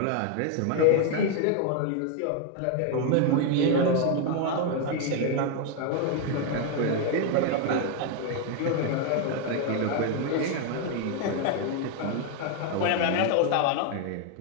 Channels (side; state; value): both; different; correlation 0.01